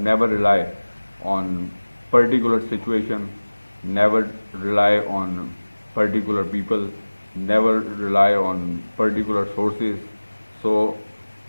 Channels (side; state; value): both; inverted; correlation -1.00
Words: Never rely on particular situation, never rely on particular people, never rely on particular sources. So